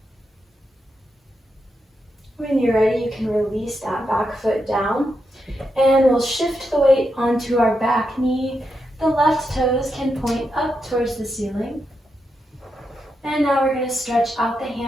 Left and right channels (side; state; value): both; normal; correlation 0.85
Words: When you're ready, you can release that back foot down. And we'll shift the weight onto our back knee. The left toes can point up towards the ceiling. And now we're going to stretch out the